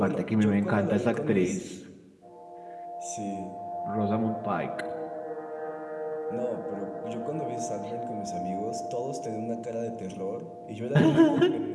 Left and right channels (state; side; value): identical; both; correlation 1.00